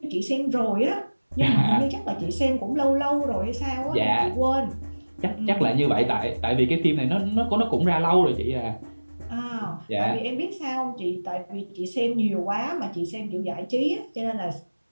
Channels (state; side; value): inverted; both; correlation -1.00